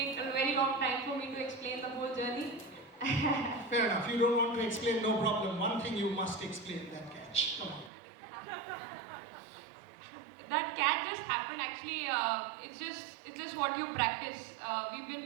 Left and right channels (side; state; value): left; drops out; at 7.9 s